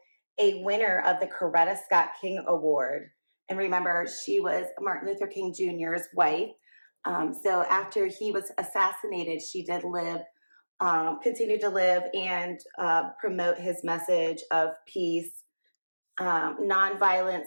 a winner of the Coretta Scott King Award. And remember, she was Martin Luther King Jr.'s wife. So after he was assassinated, she did live, continue to live and promote his message of peace,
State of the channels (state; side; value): inverted; both; correlation -1.00